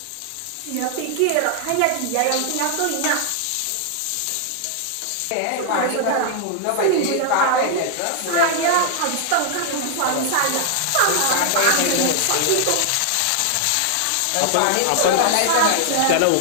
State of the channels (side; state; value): both; different; correlation 0.00